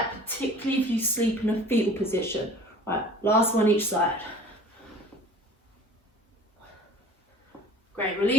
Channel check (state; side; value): normal; both; correlation 0.48